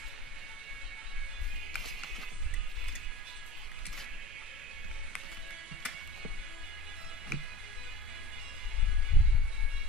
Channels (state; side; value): normal; both; correlation 0.36